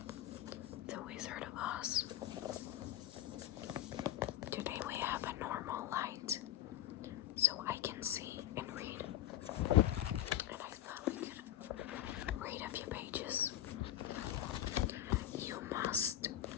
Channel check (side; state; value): right; quieter; 12.6 dB